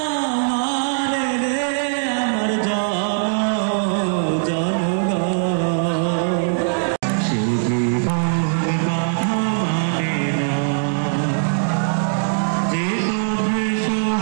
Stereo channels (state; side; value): silent; left; digital silence